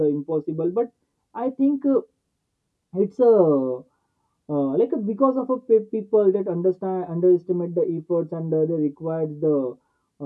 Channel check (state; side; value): identical; both; correlation 1.00